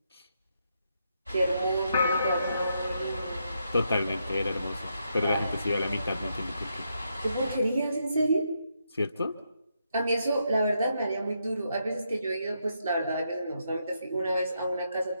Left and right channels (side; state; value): both; inverted; correlation -0.80